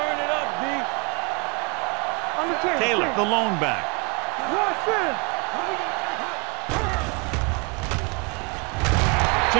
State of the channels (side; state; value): left; quieter; 31.4 dB